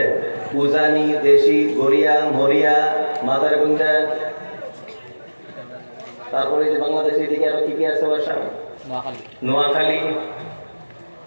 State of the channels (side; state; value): both; inverted; correlation -1.00